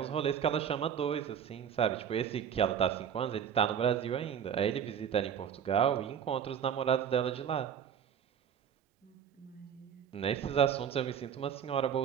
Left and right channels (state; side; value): quieter; left; 8.3 dB